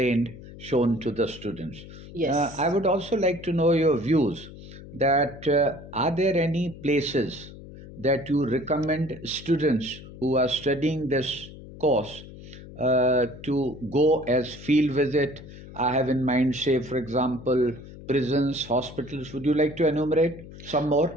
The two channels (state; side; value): noise; left; hum, 16 dB below the sound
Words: shown to the students. Yes. I would also like to know your views that are there any places that you recommend students who are studying this course to go as field visit? I have in mind, say, for example, prisons, hospitals. Would you like to enumerate some